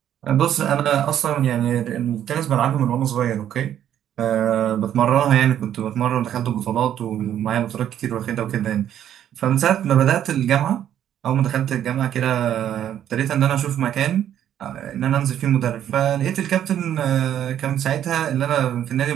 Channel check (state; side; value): quieter; left; 10.5 dB